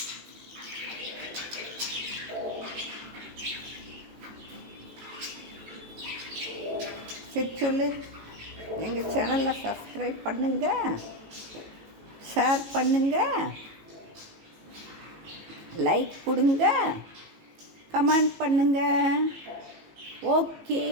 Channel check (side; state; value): left; late; 18 ms